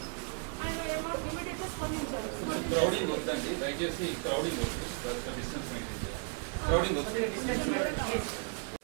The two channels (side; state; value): left; quieter; 37.7 dB